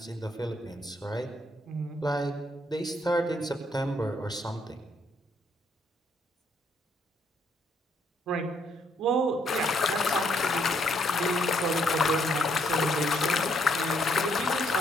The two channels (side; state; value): both; normal; correlation 0.71